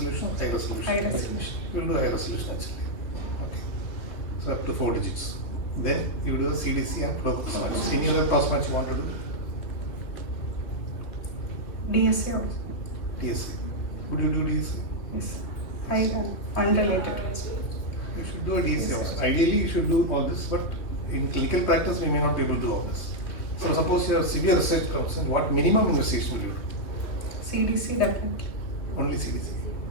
high resolution? High resolution. You will do high resolution HLA. Okay. So up to 4 digits. Then you do a CDC and flow cross match. Any other cross match you want to do? DSA also. DSA. Would you do DSA? Yes. Unrelated. You should do a DSA also. Ideally, you should do all this, but in clinical practice, we may not be able to do all this. So suppose you have severe research concern, what minimum investigation will you do? CDC definitely. Only CDC.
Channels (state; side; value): late; right; 3.0 ms